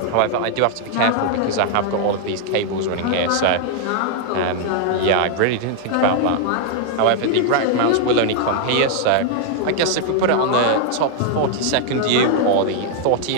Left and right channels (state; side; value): different; both; correlation 0.00